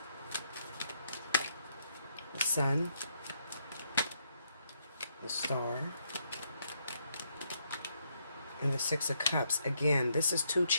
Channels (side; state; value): both; inverted; correlation -0.74